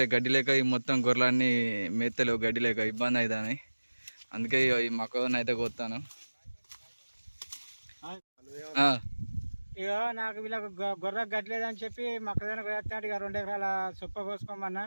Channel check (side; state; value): both; inverted; correlation -1.00